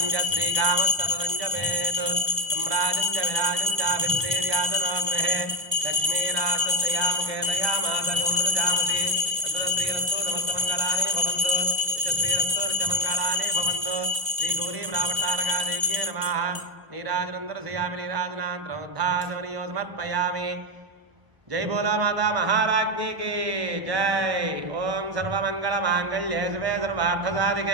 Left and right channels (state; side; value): late; left; 1.0 ms